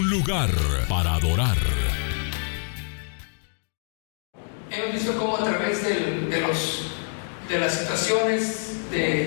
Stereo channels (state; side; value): silent; right; 61 dB below the other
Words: lugar para adorar. Hemos visto cómo a través de las situaciones